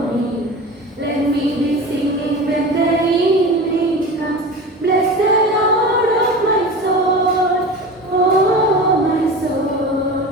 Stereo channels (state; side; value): normal; both; correlation 0.32